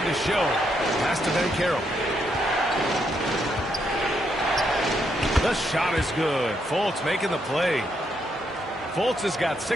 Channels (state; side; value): normal; both; correlation 0.77